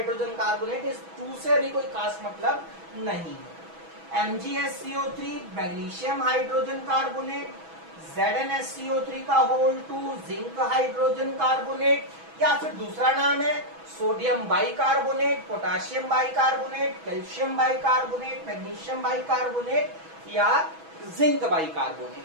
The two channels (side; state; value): left; late; 6.1 ms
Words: carbonate. इस 2 से भी कोई खास मतलब नहीं है। MgSCO3 magnesium hydrogen carbonate, ZnSCO3 का होल 2 जिंक हाइड्रोजन कार्बोनेट, या फिर दूसरा नाम है sodium bicarbonate, potassium bicarbonate, calcium bicarbonate, magnesium bicarbonate या जिंक